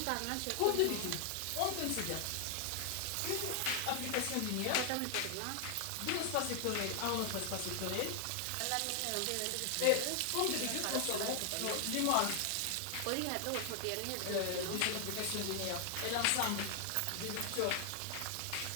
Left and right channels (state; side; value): different; both; correlation 0.00